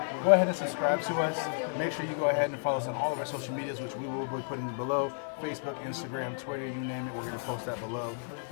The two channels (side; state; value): right; silent; 55 dB below the other